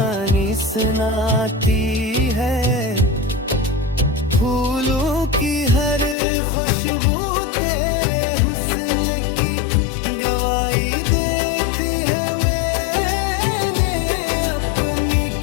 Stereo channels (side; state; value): right; drops out; at 6.2 s